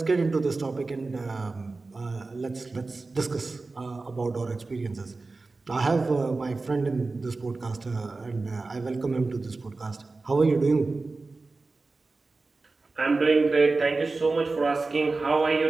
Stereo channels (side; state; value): left; quieter; 3.7 dB